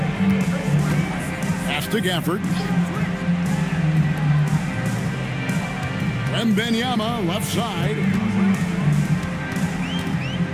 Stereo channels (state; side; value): identical; both; correlation 1.00